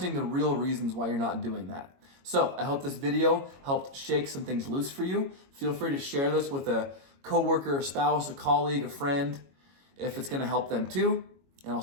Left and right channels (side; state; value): left; late; 22 ms